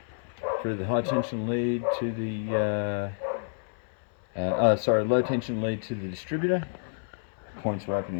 through the high tension lead to the low tension lead to the distributor. Points were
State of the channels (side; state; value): right; silent; 59 dB below the other